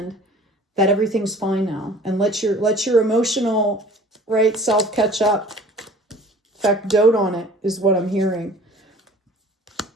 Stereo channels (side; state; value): both; normal; correlation 0.48